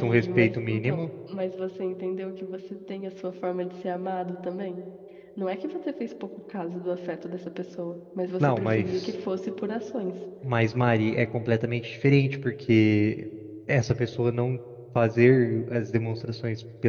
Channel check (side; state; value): both; identical; correlation 1.00